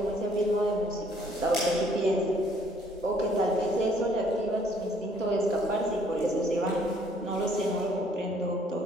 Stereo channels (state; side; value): normal; both; correlation 0.63